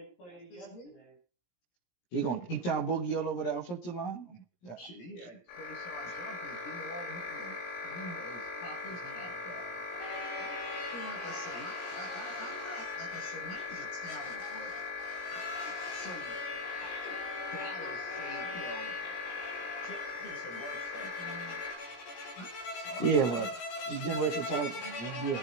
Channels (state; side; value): late; right; 17 ms